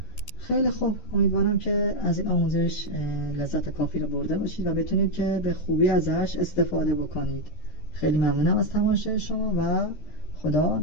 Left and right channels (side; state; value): right; late; 13 ms